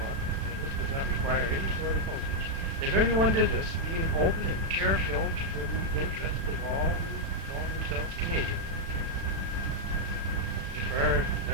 and this does not require any sort of postage. If everyone did this, being open and care-filled for the interests of all who call themselves Canadian, if our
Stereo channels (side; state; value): left; late; 36 ms